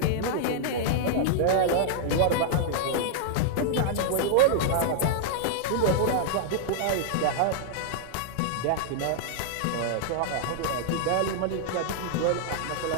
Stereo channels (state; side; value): different; both; correlation -0.01